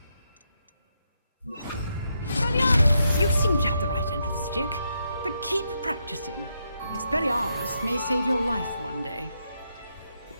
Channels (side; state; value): both; inverted; correlation -0.81